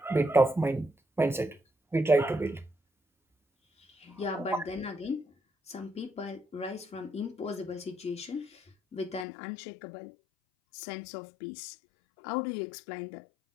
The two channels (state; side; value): drops out; right; at 9.2 s